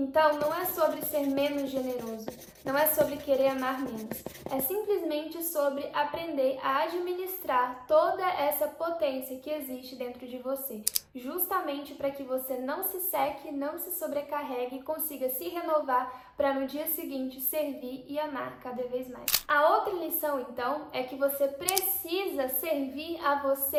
não é sobre ser menos generoso, não é sobre querer amar menos, é simplesmente sobre aprender a administrar toda essa potência que existe dentro de você, justamente para que você não se seque, não se sobrecarregue e consiga se renovar para no dia seguinte servir e amar cada vez mais. A outra lição, então, é que você precisa servir a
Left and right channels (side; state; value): both; identical; correlation 1.00